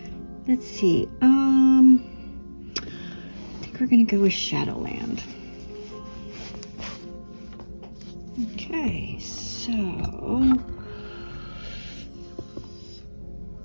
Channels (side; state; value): both; inverted; correlation -1.00